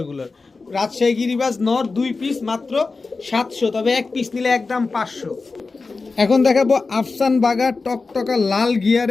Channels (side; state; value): right; quieter; 4.0 dB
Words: রাজশাহী গিরিবাজ নর 2 পিস মাত্র 700, তবে এক পিস নিলে একদম 500। এখন দেখাবো আফসান বাগা টকটকা লাল